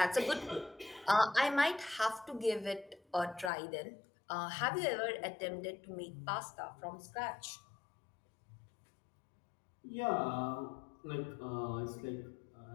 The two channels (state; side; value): drops out; right; at 3.5 s